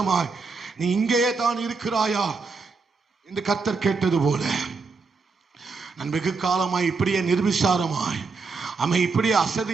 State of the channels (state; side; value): quieter; left; 4.4 dB